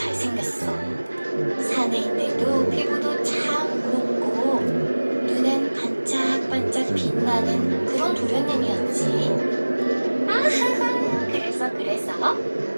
사내인데도 피부도 참 곱고 눈은 반짝반짝 빛나는 그런 도련님이었지. 아하하, 그래서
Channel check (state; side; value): inverted; both; correlation -1.00